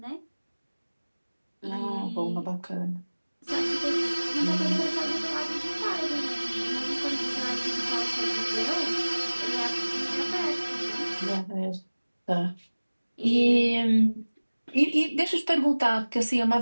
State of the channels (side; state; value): both; inverted; correlation -1.00